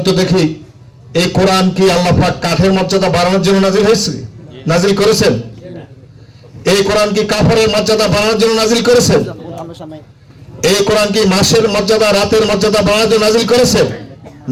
তো দেখি, এই কোরআন কি আল্লাহ পাক কাঠের মর্যাদা বাড়ানোর জন্য নাজিল হয়েছে, নাজিল করেছেন? এই কোরআন কি কাপড়ের মর্যাদা বাড়ানোর জন্য নাজিল করেছেন? এই কোরআন কি মাসের মর্যাদা, রাতের মর্যাদা বাড়ানোর জন্য নাজিল করেছেন?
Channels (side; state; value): both; identical; correlation 1.00